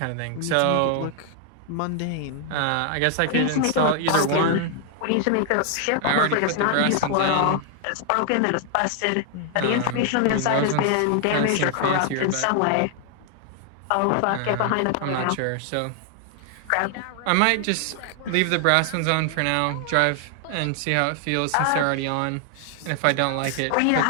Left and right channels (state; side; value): different; both; correlation 0.00